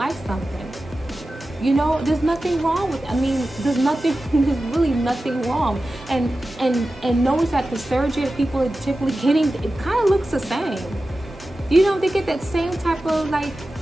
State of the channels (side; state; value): both; normal; correlation 0.94